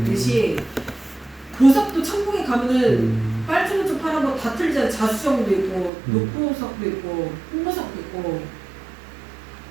보석도 천국에 가면은 빨주노초 파란 거 다 틀리잖아요. 자수정도 있고, 녹보석도 있고, 홍보석도 있고,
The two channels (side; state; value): left; drops out; at 5.9 s